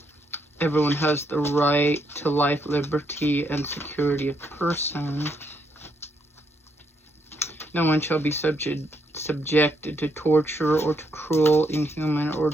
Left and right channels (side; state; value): both; normal; correlation 0.75